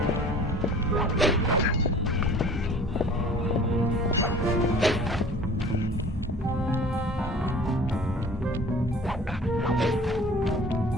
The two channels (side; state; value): both; normal; correlation 0.46